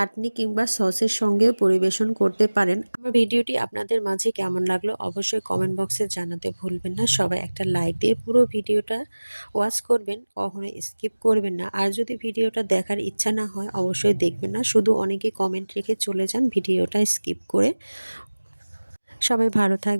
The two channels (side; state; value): both; inverted; correlation -1.00